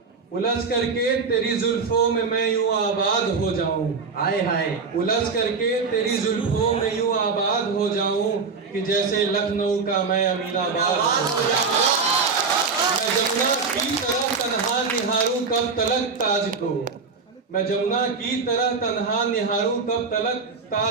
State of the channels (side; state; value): left; quieter; 4.9 dB